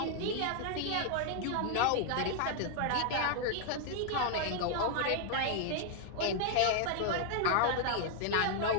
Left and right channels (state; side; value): different; both; correlation 0.00